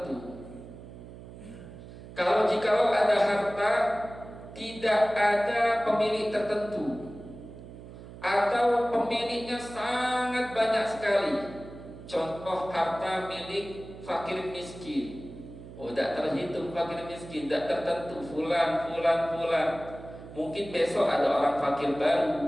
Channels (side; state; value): right; noise; hum, 15 dB below the sound